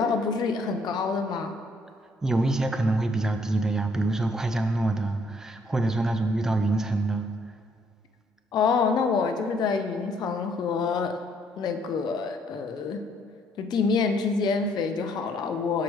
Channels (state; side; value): normal; both; correlation 0.67